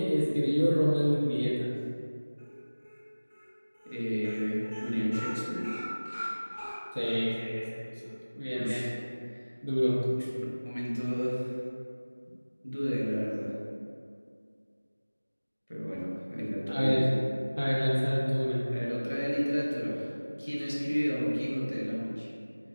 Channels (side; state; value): both; inverted; correlation -1.00